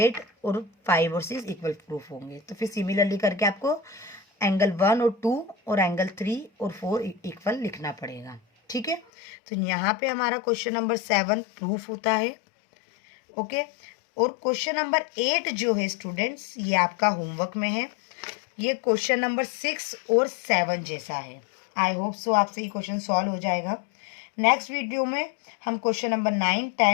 और 5 और 6 इक्वल प्रूफ होंगे। तो फिर सिमिलरली करके आपको एंगल 1 और 2 और एंगल 3 और 4 इक्वल लिखना पड़ेगा। ठीक है, तो यहाँ पे हमारा क्वेश्चन नंबर 7 प्रूफ होता है। ओके, और क्वेश्चन नंबर 8 जो है स्टूडेंट्स, ये आपका होमवर्क में है। ये क्वेश्चन नंबर 6 और 7 जैसा है। आई होप सो आपसे ये क्वेश्चन सॉल्व हो जाएगा। नेक्स्ट वीडियो में हम क्वेश्चन नंबर 9,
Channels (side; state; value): right; drops out; at 9.1 s